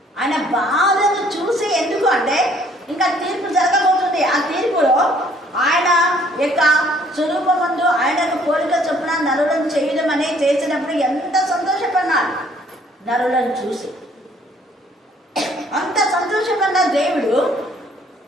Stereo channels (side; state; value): both; normal; correlation 0.61